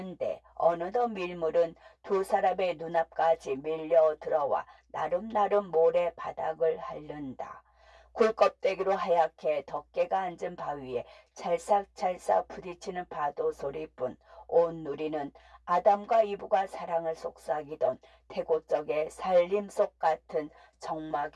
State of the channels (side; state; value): both; identical; correlation 1.00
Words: 어느덧 밀물은 두 사람의 눈앞까지 밀려 들어와 나름나름 모래 바닥을 핥는다. 굴껍데기로 하얗게 덮개가 앉은 바위에 찰싹찰싹 부딪히는 파도 소리뿐 온 누리는 아담과 이브가 사랑을 속삭이던 태고적의 살림속 같은